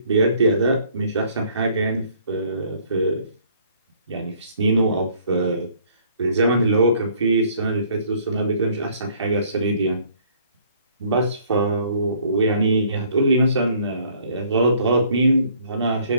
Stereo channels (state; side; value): inverted; both; correlation -0.60